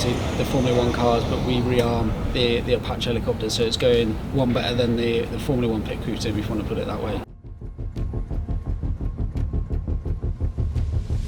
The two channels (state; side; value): identical; both; correlation 1.00